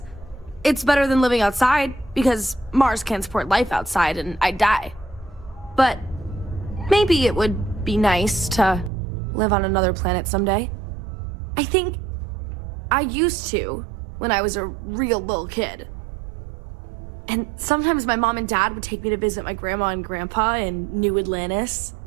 It's better than living outside, because Mars can't support life outside and I'd die. But maybe it would be nice to live on another planet someday. I think I used to when I was a real little kid. And sometimes my mom and dad would take me to visit my grandma and grandpa in New Atlantis.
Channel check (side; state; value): left; drops out; at 8.9 s